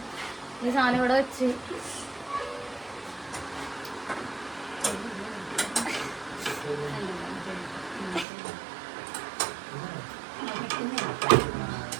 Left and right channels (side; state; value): left; drops out; at 8.2 s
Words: ഈ സാധനം ഇവിടെ വെച്ച്